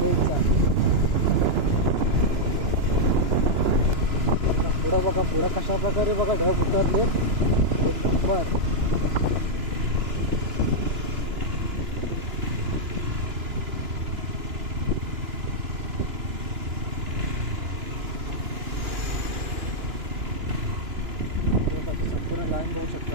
पुढं बघा, पुढं कशा प्रकारे बघा ढग उतरलेत, एक नंबर। संपूर्ण लाईन बघू शकता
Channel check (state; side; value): late; left; 2.9 ms